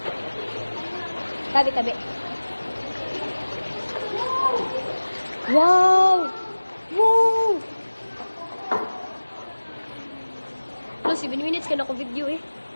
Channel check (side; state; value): both; inverted; correlation -1.00